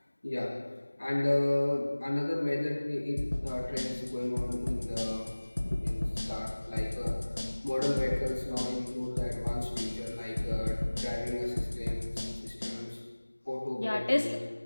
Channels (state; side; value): inverted; both; correlation -1.00